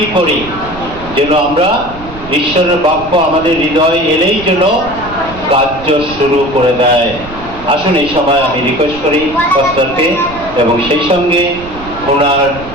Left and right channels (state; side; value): noise; right; rumble, 15 dB below the sound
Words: করি, যেন আমরা ঈশ্বরের বাক্য আমাদের হৃদয় এলেই যেন কার্য শুরু করে দেয়। আসুন এই সময় আমি রিকোয়েস্ট করি পাস্টারকে, এবং সেই সঙ্গে ওনার